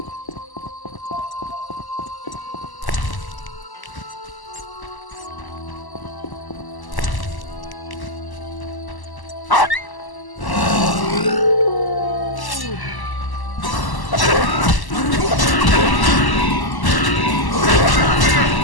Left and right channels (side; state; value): right; late; 1.0 ms